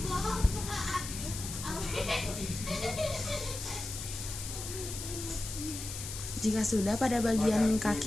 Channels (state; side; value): noise; left; hiss, 8 dB below the sound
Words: Jika sudah pada bagian